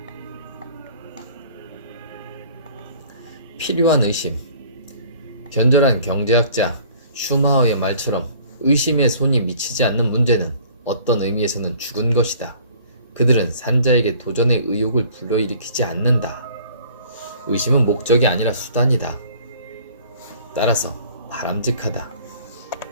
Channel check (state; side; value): inverted; both; correlation -0.52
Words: 필요한 의심. 견절한 경제학자 슈마허의 말처럼 의심의 손이 미치지 않는 문제는 어떤 의미에서는 죽은 것이다. 그들은 산자에게 도전의 의욕을 불러일으키지 않는다. 의심은 목적이 아니라 수단이다. 따라서 바람직하다.